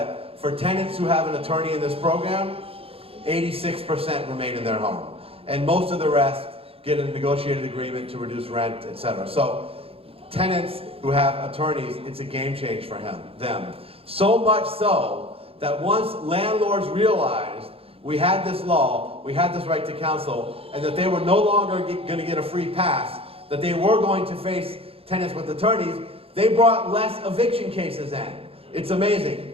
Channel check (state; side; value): late; left; 0.27 ms